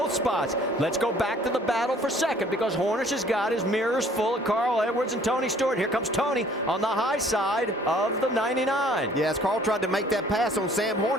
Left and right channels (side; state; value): both; normal; correlation 0.57